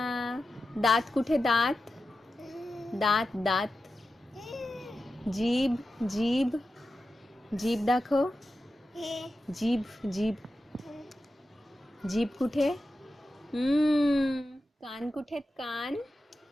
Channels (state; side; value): normal; both; correlation 0.91